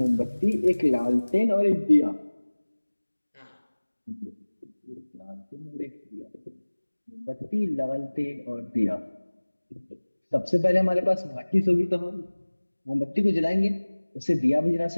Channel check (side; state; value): both; inverted; correlation -1.00